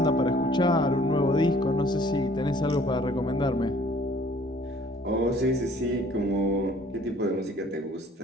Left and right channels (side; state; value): both; normal; correlation 0.56